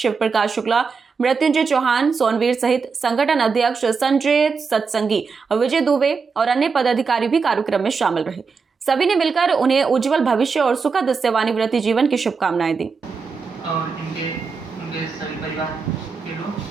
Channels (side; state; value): left; quieter; 5.2 dB